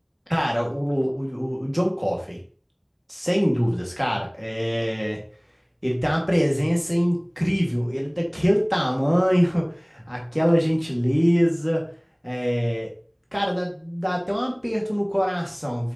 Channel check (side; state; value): both; identical; correlation 1.00